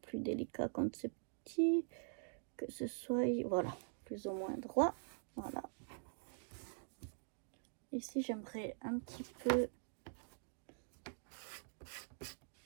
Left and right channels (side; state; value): left; silent; digital silence